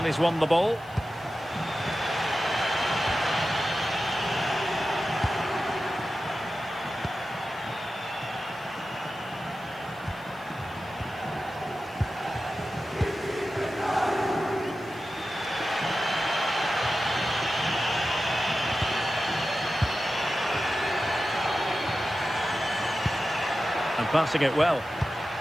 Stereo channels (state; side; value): noise; left; hiss, 27 dB below the sound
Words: he's won the ball. And passing it well.